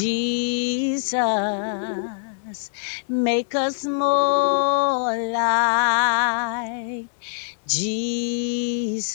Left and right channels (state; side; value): silent; right; 59 dB below the other